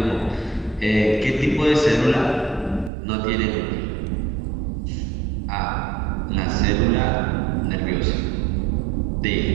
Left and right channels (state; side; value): drops out; left; at 2.9 s